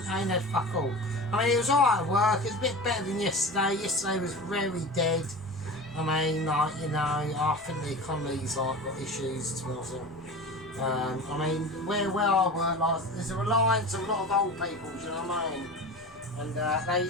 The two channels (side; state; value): both; normal; correlation 0.32